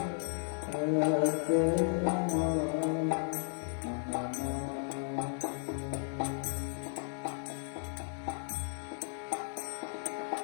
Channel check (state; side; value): silent; right; digital silence